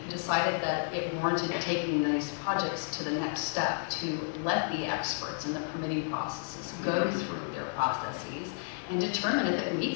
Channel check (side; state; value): right; silent; digital silence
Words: decided that it warranted taking these projects to the next step to let the experts in the permitting processes go through their processes and determine if it